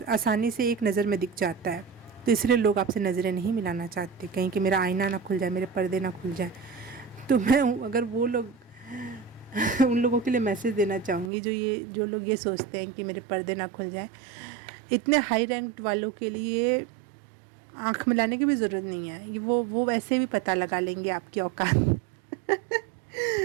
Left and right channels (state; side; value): drops out; left; at 11.3 s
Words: से एक नज़र में दिख जाता है, तो इसलिए लोग आपसे नज़रें नहीं मिलाना चाहते, कहीं कि मेरा आईना ना खुल जाए, मेरे पर्दे ना खुल जाए। तो मैं अगर वो लोग उन लोगों के लिए मैसेज देना चाहूँगी जो लोग ये सोचते हैं कि मेरे पर्दे ना खुल जाए। इतने हाई रैंक्ड वालों के लिए आँख मिलाने की भी ज़रूरत नहीं है, वो वैसे भी पता लगा लेंगे आपकी औकात